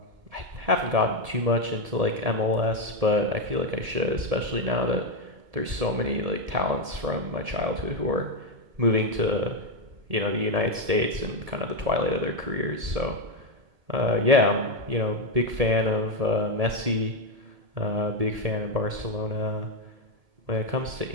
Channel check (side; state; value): left; late; 1.7 ms